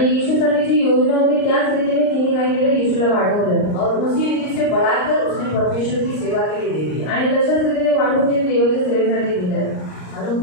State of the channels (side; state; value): right; late; 39 ms